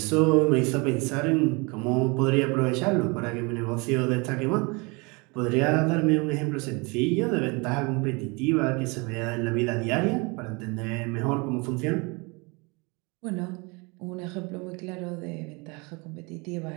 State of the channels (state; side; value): quieter; left; 28.5 dB